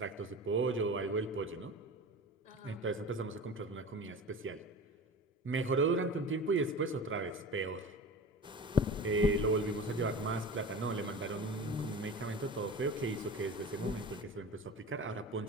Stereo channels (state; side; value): normal; both; correlation 0.34